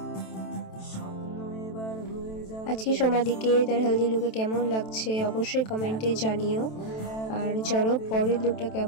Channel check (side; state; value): right; late; 27 ms